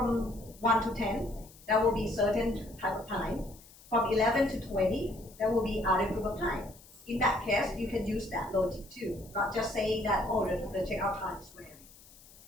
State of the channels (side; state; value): left; noise; hiss, 23 dB below the sound